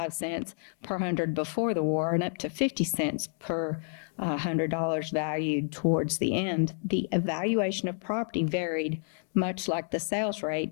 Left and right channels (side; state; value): right; silent; 58 dB below the other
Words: cents per hundred before the war and up to 50 cents per $100 valued towards the end, the evaluation of property varied, much like the sales rate,